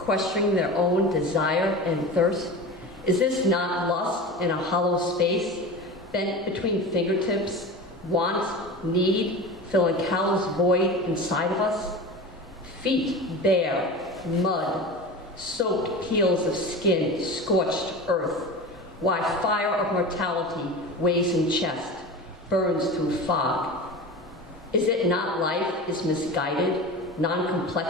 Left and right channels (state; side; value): normal; both; correlation 0.30